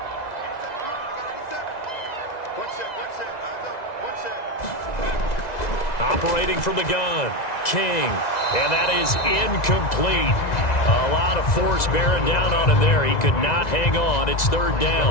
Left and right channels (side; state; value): right; late; 2.0 ms